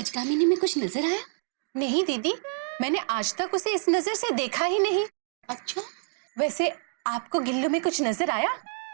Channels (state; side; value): silent; left; digital silence